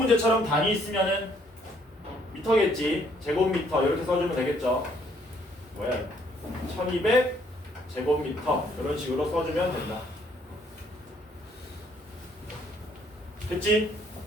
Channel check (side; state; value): both; normal; correlation 0.66